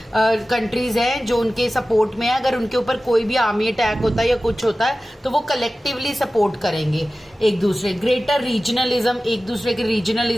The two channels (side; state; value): both; normal; correlation 0.96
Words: कंट्रीज हैं जो उनके सपोर्ट में है, अगर उनके ऊपर कोई भी आर्मी अटैक होता है या कुछ होता है तो वो कलेक्टिवली सपोर्ट करेंगे एक दूसरे। ग्रेटर रीजनलिज्म, एक दूसरे के